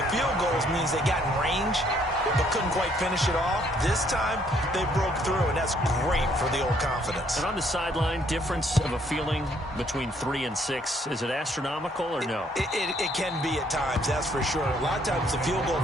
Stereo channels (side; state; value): both; normal; correlation 0.66